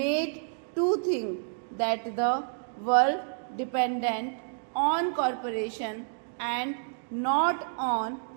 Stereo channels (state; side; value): silent; left; digital silence